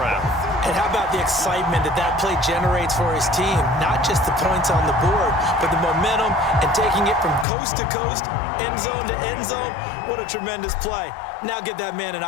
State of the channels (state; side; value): drops out; right; at 7.5 s